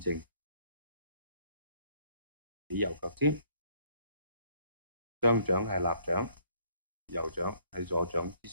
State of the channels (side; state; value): both; inverted; correlation -0.64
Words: 正，起右腳尖，雙掌係立掌，右掌喺左掌之